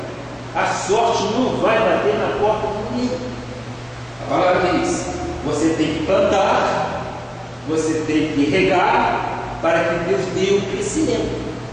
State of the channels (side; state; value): both; identical; correlation 1.00